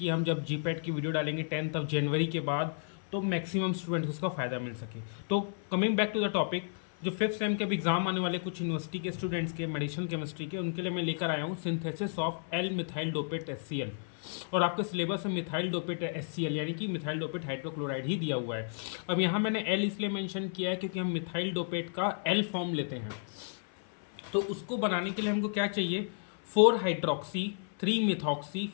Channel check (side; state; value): right; silent; 56 dB below the other